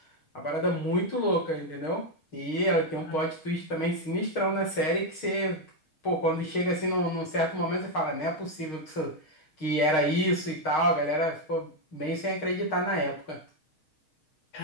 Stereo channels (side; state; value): right; late; 6.4 ms